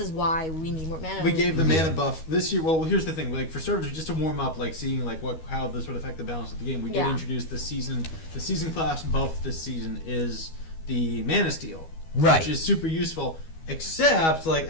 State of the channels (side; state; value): right; late; 12 ms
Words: why we need more mana. We gave the mana buff this year. Well, here's the thing: like for starters, just to warm up, like seeing like how this would affect the balance of the game. We did introduce the season class buff this season is the mana steal, Right. Which is super useful. Except like